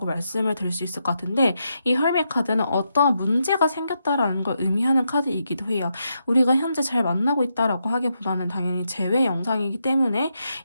말씀을 드릴 수 있을 것 같은데 이 헐밋 카드는 어떠한 문제가 생겼다라는 걸 의미하는 카드이기도 해요. 우리가 현재 잘 만나고 있다라고 하기보다는 당연히 재회 영상이기 때문에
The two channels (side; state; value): both; inverted; correlation -0.82